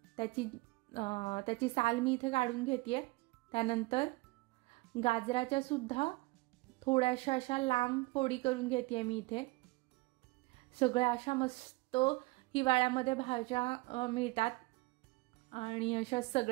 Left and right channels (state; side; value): quieter; left; 23.2 dB